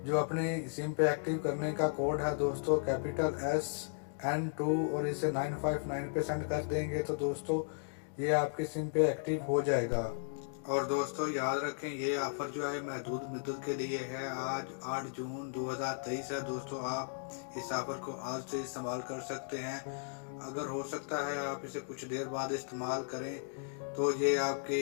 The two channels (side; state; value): right; silent; digital silence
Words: जो अपनी सिम पे एक्टिव करने का कोड है दोस्तों कैपिटल SN2 और इसे 959 पे सेंड कर देंगे। तो दोस्तों ये आपकी सिम पे एक्टिव हो जाएगा। और दोस्तों याद रखें ये ऑफ़र जो है महदूद मुद्दत के लिए है। आज 8 जून 2023 है। दोस्तों आप इस ऑफ़र को आज से इस्तेमाल कर सकते हैं। अगर हो सकता है आप इसे कुछ देर बाद इस्तेमाल करें तो ये आपके